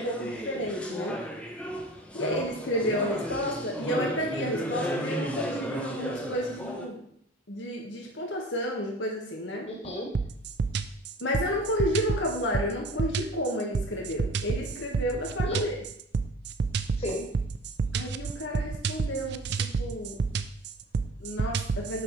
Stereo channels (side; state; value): both; normal; correlation 0.41